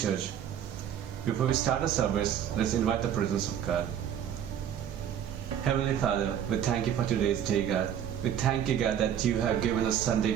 Church. Before we start the service, let's invite the presence of God. Heavenly Father, we thank you for today's day, God. We thank you, God, that you have given us Sunday,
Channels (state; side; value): quieter; left; 9.5 dB